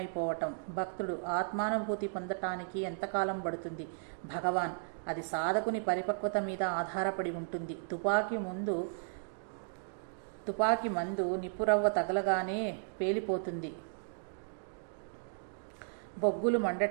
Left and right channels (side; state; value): left; silent; digital silence